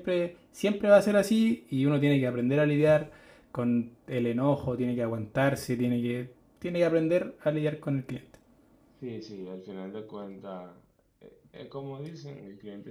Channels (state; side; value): identical; both; correlation 1.00